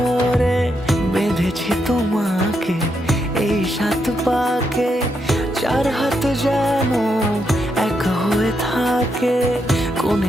বেঁধেছি তোমাকে এই 7 পাকে, 4 হাত যেন এক হয়ে থাকে।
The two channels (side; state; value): both; normal; correlation 0.81